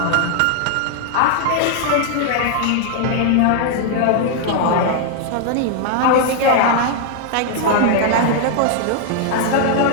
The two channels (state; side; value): different; both; correlation 0.00